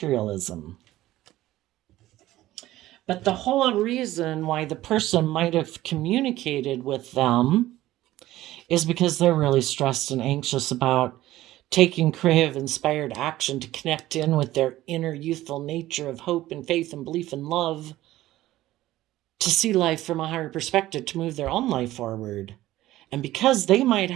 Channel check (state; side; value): quieter; left; 15.6 dB